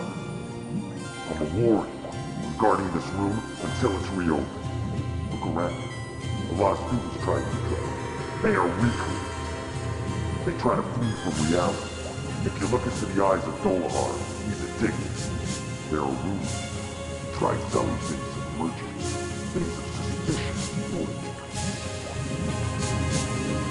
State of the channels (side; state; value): both; identical; correlation 1.00